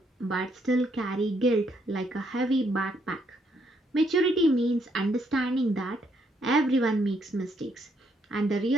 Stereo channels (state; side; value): normal; both; correlation 0.73